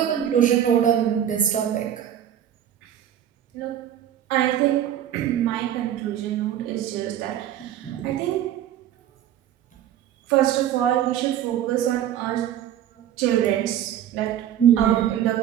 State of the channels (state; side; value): quieter; left; 10.8 dB